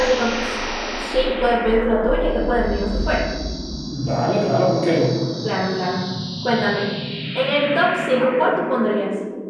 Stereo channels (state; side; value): identical; both; correlation 1.00